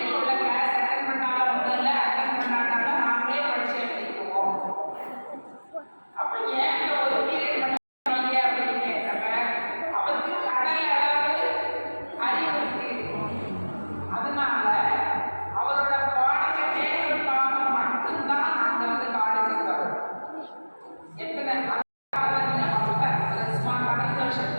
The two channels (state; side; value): inverted; both; correlation -1.00